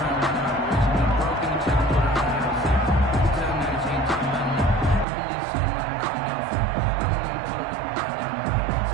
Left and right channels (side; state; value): left; drops out; at 5.1 s